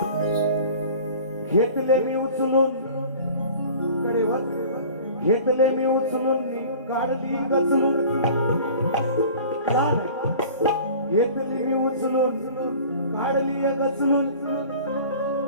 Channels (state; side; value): inverted; both; correlation -0.44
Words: घेतले मी उचलून कडेवर, घेतले मी उचलून, काढली गचलून. घेतली मी उचलून, काढली गचलून.